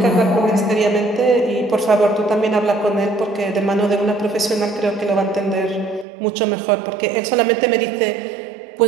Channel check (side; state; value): left; drops out; at 6.1 s